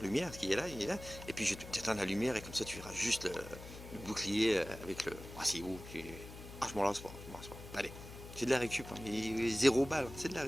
qui est là, il est là. Et puis je vais t'éteindre la lumière et comme ça tu verras juste le bouclier avec le... Ah c'est beau, ah je m'en lance pas, Allez, c'est de la récup, hein, mais 0 balle, c'est de la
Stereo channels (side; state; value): left; noise; hum, 13 dB below the sound